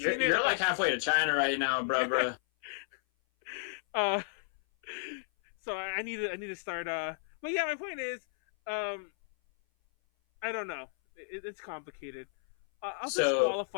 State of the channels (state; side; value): silent; right; 56 dB below the other